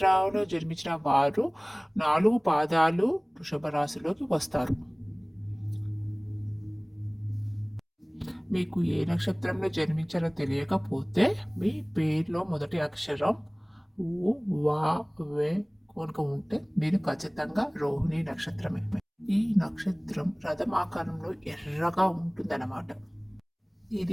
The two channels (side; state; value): both; identical; correlation 1.00